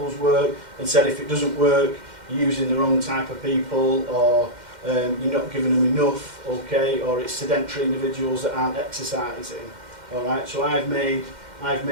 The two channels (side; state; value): left; late; 2.1 ms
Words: work and said if it doesn't work, you're using the wrong type of people, or you're not giving them enough, okay, or it's sedentary individuals that aren't exercising. Alright, so I've made